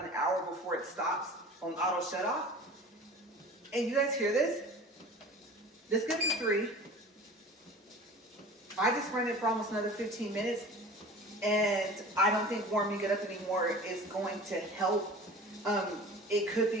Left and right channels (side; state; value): both; normal; correlation 0.40